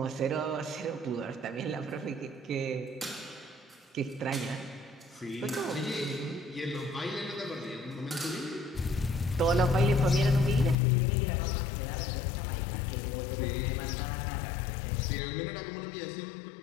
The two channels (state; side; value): drops out; right; at 10.8 s